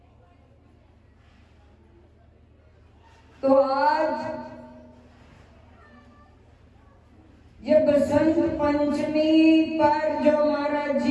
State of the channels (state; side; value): identical; both; correlation 1.00